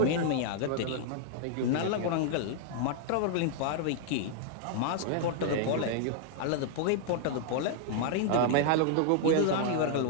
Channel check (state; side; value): different; both; correlation -0.01